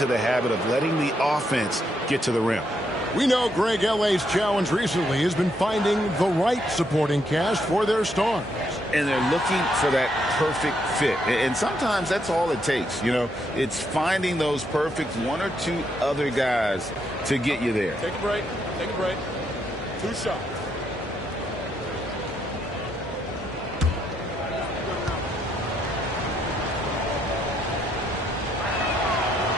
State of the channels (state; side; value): normal; both; correlation 0.76